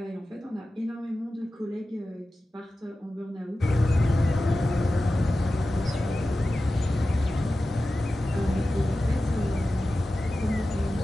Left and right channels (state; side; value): normal; both; correlation 0.94